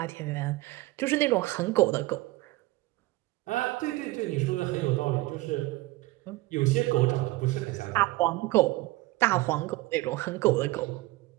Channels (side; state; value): left; quieter; 20.0 dB